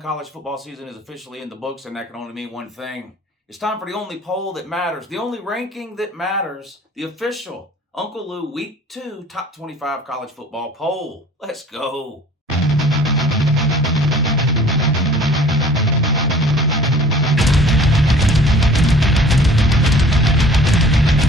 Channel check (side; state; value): both; normal; correlation 0.50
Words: college football season is officially in the books, and that can only mean one thing. It's time for the only poll that matters, the only ranking that matters, the official Uncle Lou Week 2 Top 25 College Football Poll. Let's go.